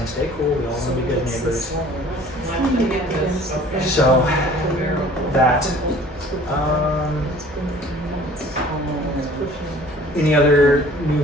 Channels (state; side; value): normal; both; correlation 0.50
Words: stay cool, we all want to be good neighbors. So that, any other